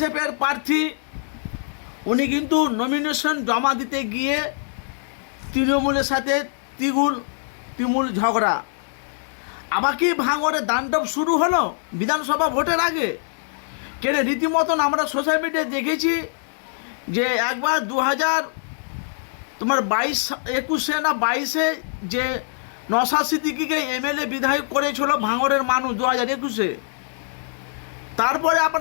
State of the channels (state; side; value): silent; right; digital silence